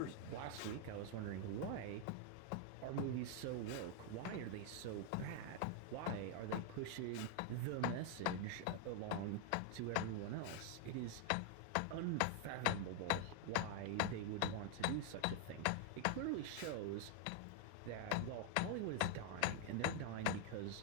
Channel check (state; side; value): different; both; correlation 0.00